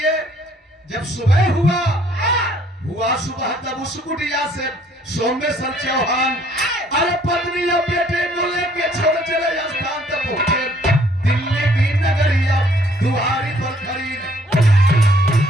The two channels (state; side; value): normal; both; correlation 0.62